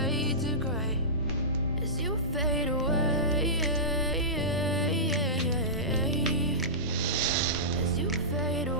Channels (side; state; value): both; normal; correlation -0.18